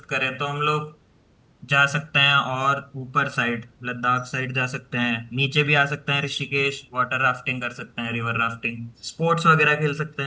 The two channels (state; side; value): identical; both; correlation 1.00